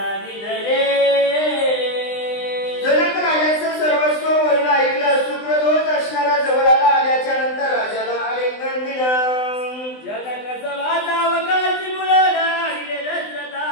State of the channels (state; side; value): late; right; 20 ms